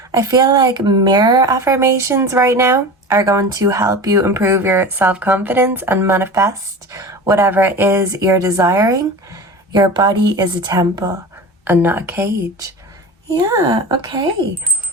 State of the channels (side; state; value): both; normal; correlation 0.32